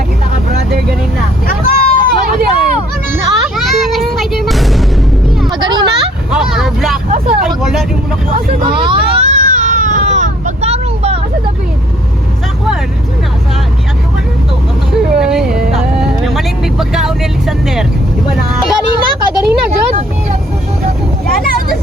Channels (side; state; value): both; normal; correlation 0.62